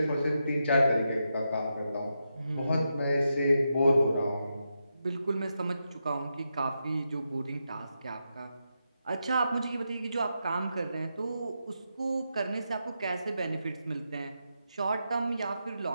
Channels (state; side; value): inverted; both; correlation -0.85